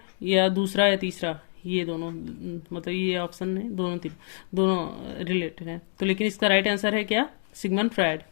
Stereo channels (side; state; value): right; silent; digital silence